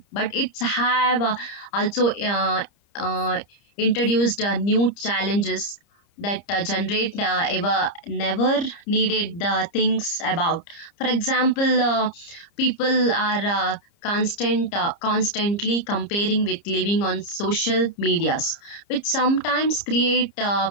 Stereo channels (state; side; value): late; right; 30 ms